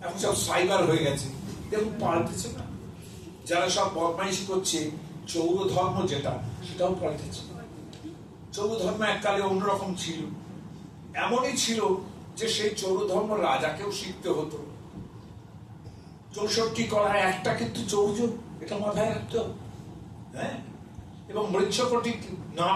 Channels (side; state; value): both; identical; correlation 1.00